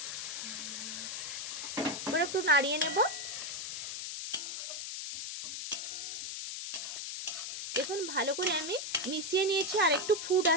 এবার একটু নাড়িয়ে নেব। দেখুন, ভালো করে আমি মিশিয়ে নিয়েছি, আর একটু ফুট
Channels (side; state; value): left; noise; hiss, 5 dB below the sound